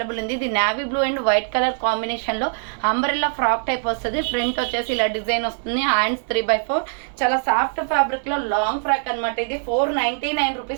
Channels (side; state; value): left; silent; digital silence